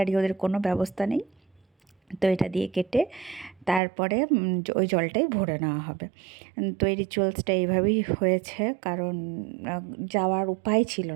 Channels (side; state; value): left; drops out; at 3.8 s